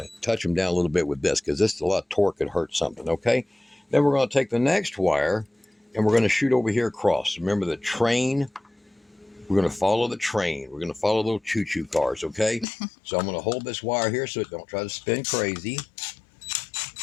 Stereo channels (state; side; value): drops out; right; at 12.7 s